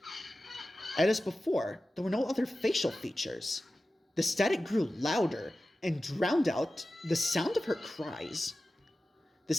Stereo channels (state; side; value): normal; both; correlation 0.94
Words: And as before, there were no other facial features. The static grew louder and drowned out the sound of her cries. The